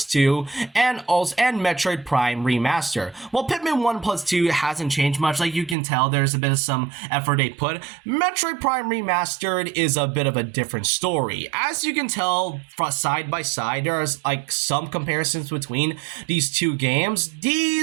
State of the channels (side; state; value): left; drops out; at 5.8 s